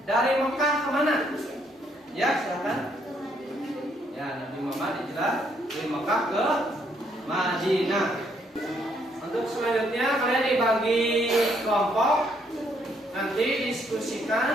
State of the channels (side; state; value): both; normal; correlation 0.71